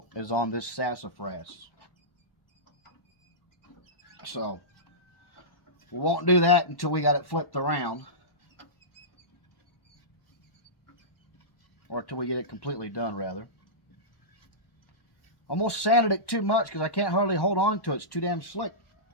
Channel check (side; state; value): right; late; 1.1 ms